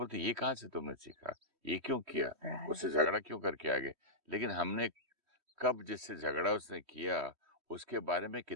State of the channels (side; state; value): left; late; 3.1 ms